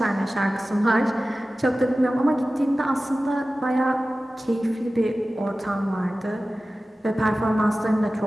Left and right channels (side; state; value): both; normal; correlation 0.96